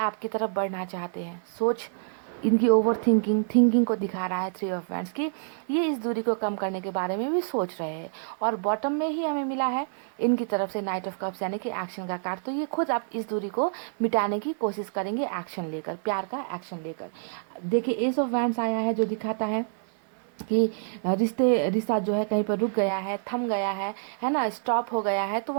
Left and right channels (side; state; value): left; silent; 60 dB below the other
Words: तरफ बढ़ना चाहते हैं। सोच इनकी ओवर थिंकिंग को दिखा रहा है थ्री ऑफ वैंड्स की। ये इस दूरी को कम करने के बारे में भी सोच रहे हैं। और बॉटम में ही हमें मिला है इनकी तरफ से नाइट ऑफ कप्स, यानी कि एक्शन का कार्ड। तो ये खुद आप इस दूरी को मिटाने की कोशिश करेंगे एक्शन लेकर, प्यार का एक्शन लेकर। देखिए एस ऑफ वैंड्स आया है जो दिखाता है कि रिश्ता जो है कहीं पर रुक गया है, थम गया है ना, स्टॉप हो गया है, तो